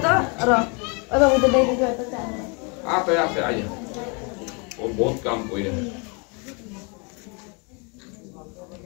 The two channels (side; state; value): right; quieter; 33.5 dB